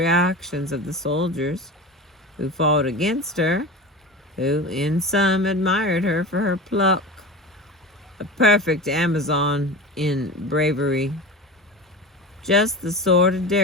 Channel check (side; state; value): both; normal; correlation 0.30